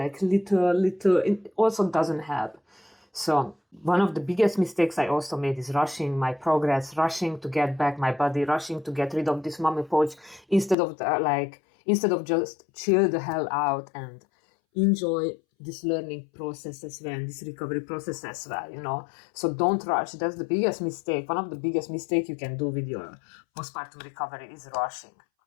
little, it also doesn't help. So one of the biggest mistakes I also made is rushing my progress, rushing to get back my body, rushing to get rid of this mommy pouch, instead of just chill the hell out and enjoy this learning process as well, and this recovery process as well, So don't rush. That's the biggest mistake. One of the biggest mistakes you can do with your postpartum recovery is rushing.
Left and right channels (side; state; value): right; drops out; at 10.8 s